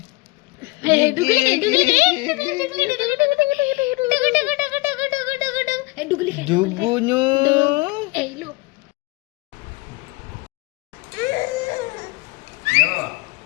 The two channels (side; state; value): right; quieter; 24.7 dB